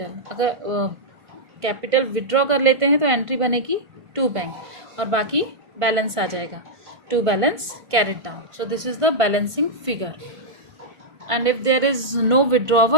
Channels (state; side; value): late; left; 1.5 ms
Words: अगर capital withdraw कर लेते हैं तो entry बनेगी to bank और बाकी balance आ जाएगा to balance carried down. So this is the balancing figure. And if there is no